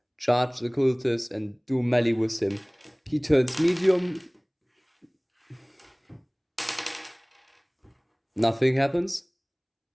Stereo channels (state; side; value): identical; both; correlation 1.00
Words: charge the cultist and do melee with him. He turns medium. Nothing happens.